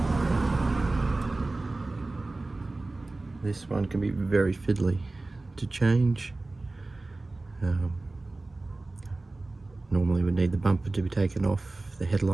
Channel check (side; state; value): left; quieter; 3.1 dB